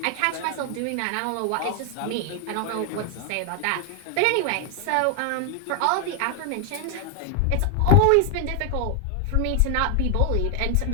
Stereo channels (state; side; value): different; both; correlation 0.00